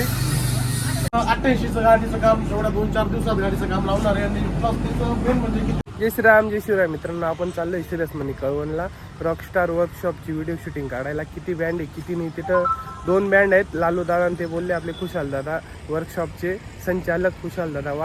88चं गाडीचं काम एवढ्या 2-4 दिवसात गाडीचं काम लावणार आहे. आणि प्लस त्याचं मेन म्हणजे की जय श्रीराम जय शिवराय मित्रांनो, आपण चाललोय सिरियस मनी कळवणला रॉकस्टार वर्कशॉपची व्हिडिओ शूटिंग काढायला. किती बँड आहे किती नाही, तिथं 2 बँड आहेत. लालू दादा आणि ते बोलले आपले खुशाल दादा वर्कशॉपचे संचालक खुशाल दादा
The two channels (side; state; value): both; identical; correlation 1.00